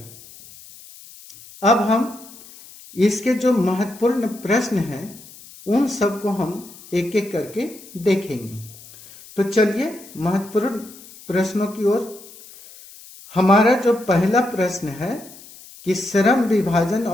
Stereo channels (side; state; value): left; noise; hiss, 20 dB below the sound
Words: अब हम इसके जो महत्वपूर्ण प्रश्न हैं उन सबको हम एक एक करके देखेंगे। तो चलिए महत्वपूर्ण प्रश्नों की ओर। हमारा जो पहला प्रश्न है कि श्रम विभाजन